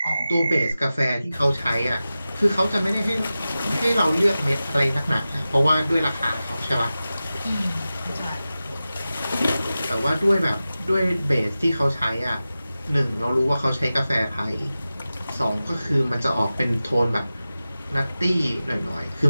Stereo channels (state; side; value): inverted; both; correlation -0.95